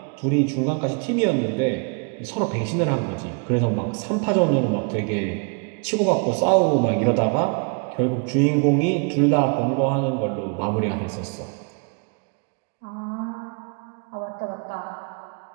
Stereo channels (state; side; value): quieter; left; 36.6 dB